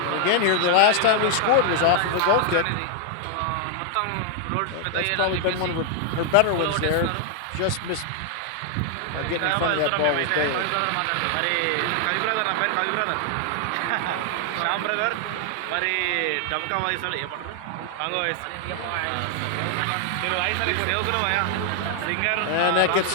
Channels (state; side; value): different; both; correlation 0.00